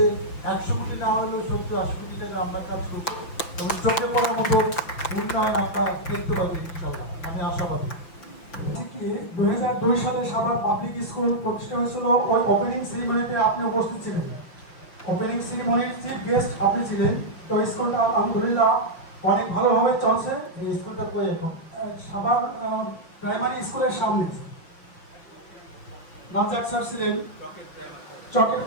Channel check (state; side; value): late; right; 6.3 ms